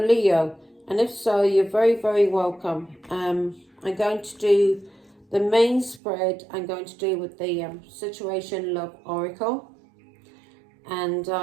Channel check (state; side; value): drops out; left; at 6.0 s